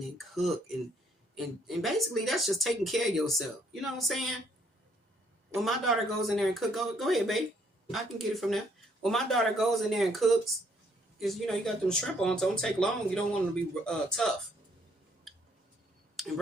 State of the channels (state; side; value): normal; both; correlation 0.67